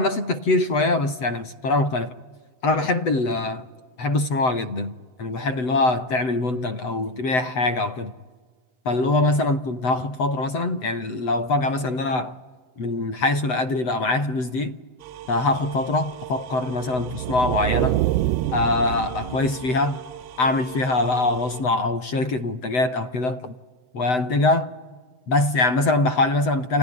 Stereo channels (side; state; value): right; late; 7.9 ms